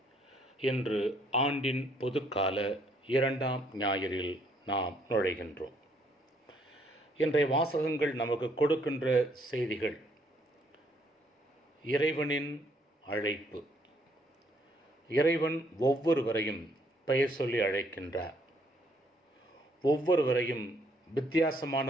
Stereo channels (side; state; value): both; normal; correlation 0.68